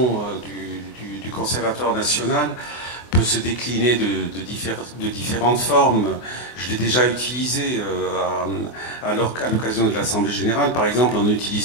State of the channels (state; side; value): late; right; 24 ms